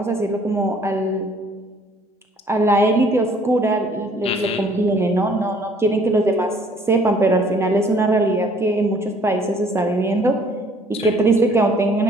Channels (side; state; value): both; normal; correlation 0.59